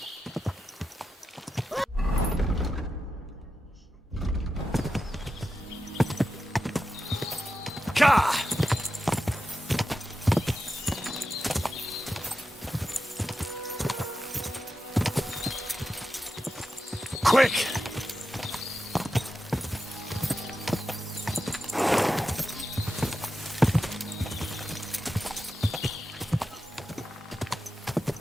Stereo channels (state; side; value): normal; both; correlation 0.90